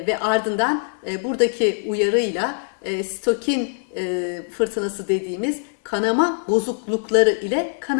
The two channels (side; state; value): right; silent; 64 dB below the other